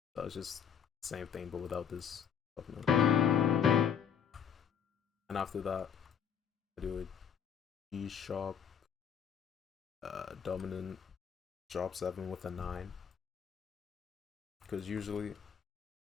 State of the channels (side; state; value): right; quieter; 7.8 dB